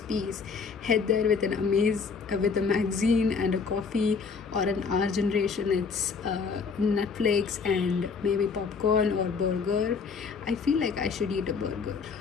peace, head there with with a magazine and a coffee, or an our generation it's Netflix and maybe popcorn or burger. I feel like I should eat a burger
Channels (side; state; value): right; quieter; 5.3 dB